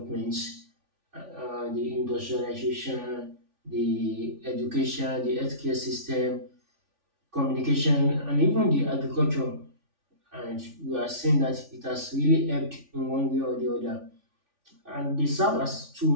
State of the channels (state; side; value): late; left; 3.5 ms